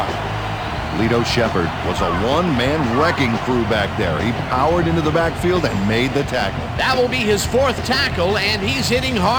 Lito Shepard was a one-man wrecking crew back there. He powered into the backfield and made the tackle. That will be his 4th tackle, and he's hitting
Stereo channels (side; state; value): both; identical; correlation 1.00